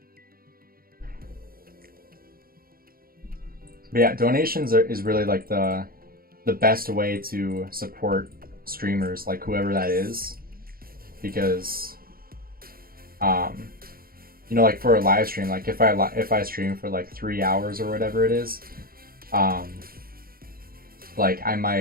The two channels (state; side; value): late; left; 0.43 ms